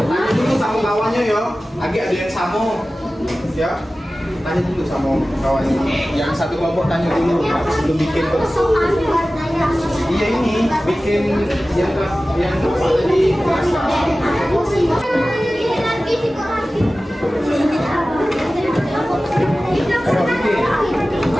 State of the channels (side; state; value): both; normal; correlation 0.96